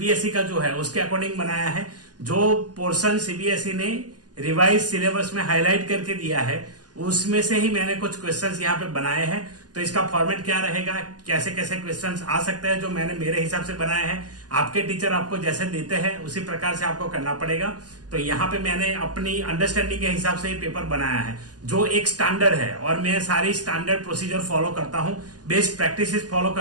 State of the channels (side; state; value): left; late; 0.69 ms